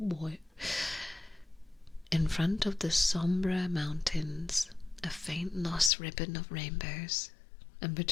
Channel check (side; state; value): right; drops out; at 5.9 s